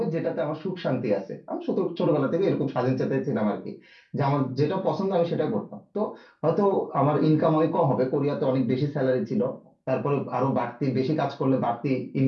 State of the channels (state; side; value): identical; both; correlation 1.00